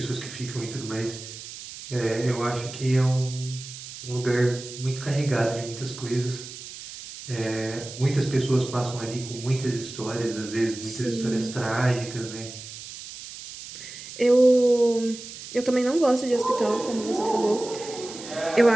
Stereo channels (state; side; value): noise; right; hiss, 13 dB below the sound